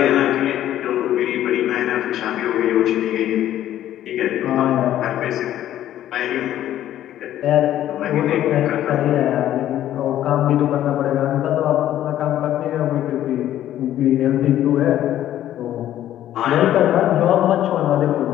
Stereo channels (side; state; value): right; quieter; 12.3 dB